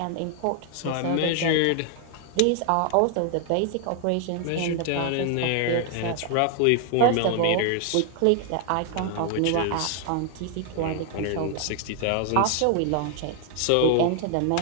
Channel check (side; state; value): both; different; correlation 0.00